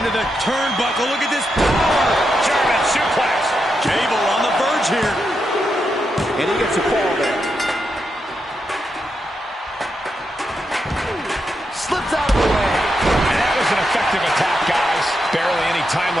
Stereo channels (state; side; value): normal; both; correlation 0.85